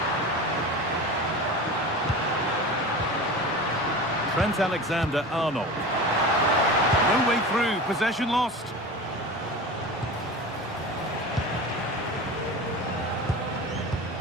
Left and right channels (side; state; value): both; normal; correlation 0.31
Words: Trent Alexander-Arnold. No way through, possession lost.